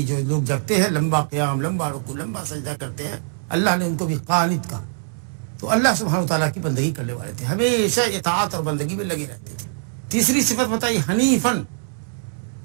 جو لوگ جگتے ہیں، لمبا قیام، لمبا رکوع، لمبا سجدہ کرتے ہیں، اللہ نے ان کو بھی قانت کہا۔ تو اللہ سبحانہ وتعالیٰ کی بندگی کرنے والے تھے، ہمیشہ اطاعت اور بندگی میں لگے رہتے تھے۔ تیسری صفت بتائی حنیفن،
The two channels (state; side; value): silent; left; 64 dB below the other